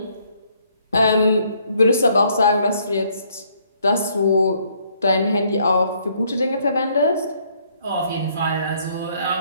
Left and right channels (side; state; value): both; inverted; correlation -0.67